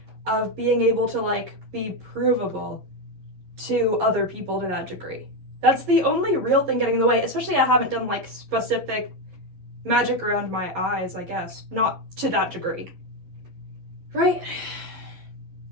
of being able to like be provable to other people to that degree? That's the only real thing getting in the way, especially I haven't done like specific magic around my eyes, I guess. Not to that degree. Right?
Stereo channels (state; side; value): late; left; 11 ms